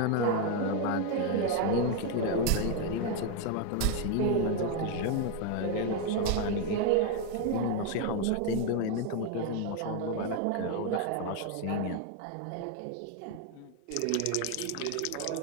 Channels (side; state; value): both; different; correlation 0.01